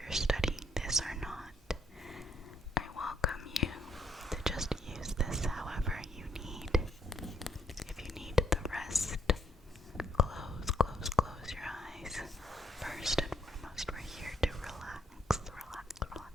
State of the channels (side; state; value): both; normal; correlation 0.70